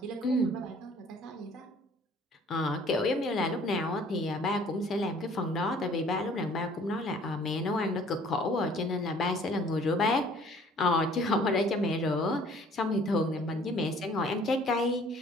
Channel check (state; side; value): normal; both; correlation 0.55